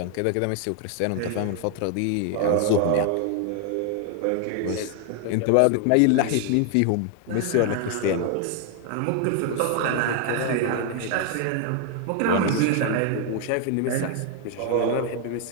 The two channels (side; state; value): both; different; correlation 0.00